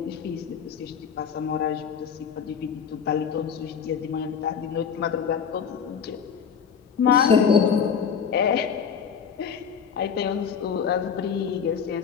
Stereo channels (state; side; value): quieter; right; 7.0 dB